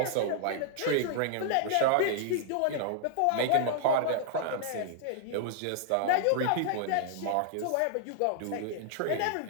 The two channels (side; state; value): both; different; correlation -0.01